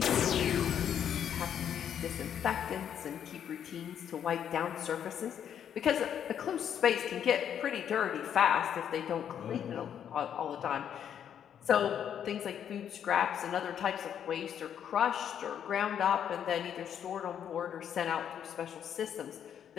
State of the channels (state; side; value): quieter; right; 9.0 dB